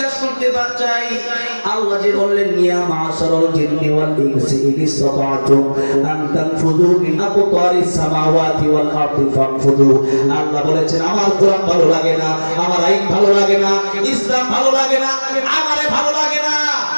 করতে চাই, আল্লাহ যে বললেন ইয়া মাশারাল জিন্নি ওয়াল ইনসি ইন ইসতাতা'তুম আন তানফুযু মিন আকতারিস সামাওয়াতি ওয়াল আরদি ফানফুযু। আল্লাহ বলেছেন আমার কোরআন ভালো লাগে না, আমার আইন ভালো লাগে না, ইসলাম ভালো লাগে না, আমারে ভালো লাগে না।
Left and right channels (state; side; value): inverted; both; correlation -1.00